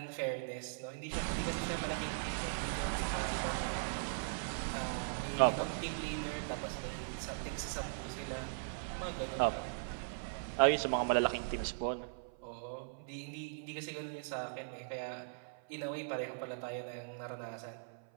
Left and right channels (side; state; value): left; silent; 52 dB below the other